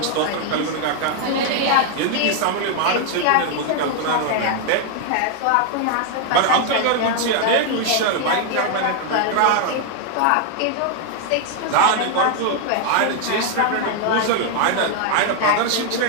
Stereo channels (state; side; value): different; both; correlation 0.00